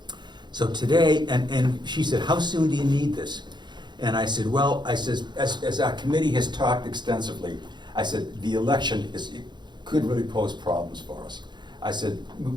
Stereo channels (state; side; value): late; left; 0.21 ms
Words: So today, and she said, how soon do you need this? And I said, well, I says, as our committee has talked extensively, I said, the election could really pose problems for us. I said,